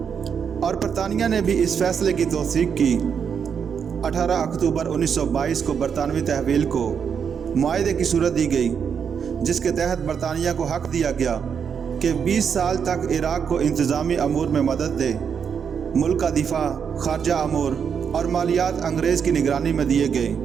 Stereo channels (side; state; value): left; quieter; 7.1 dB